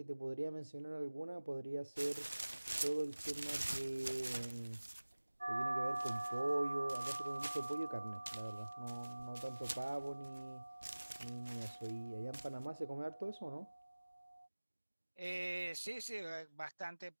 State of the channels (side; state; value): both; inverted; correlation -1.00